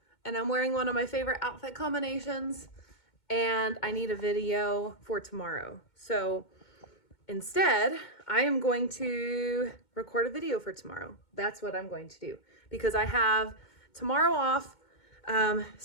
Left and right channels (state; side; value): late; right; 2.2 ms